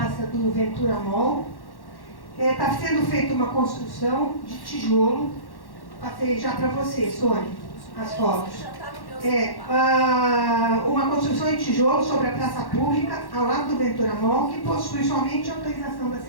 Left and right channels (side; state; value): right; late; 1.1 ms